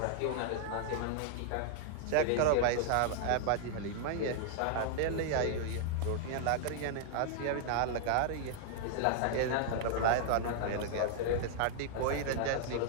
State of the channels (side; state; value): both; different; correlation 0.00